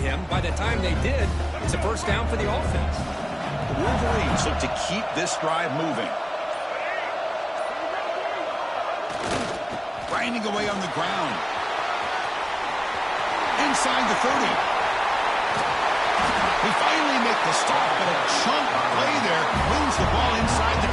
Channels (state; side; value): identical; both; correlation 1.00